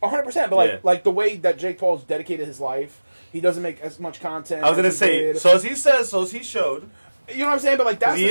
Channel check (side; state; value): both; inverted; correlation -1.00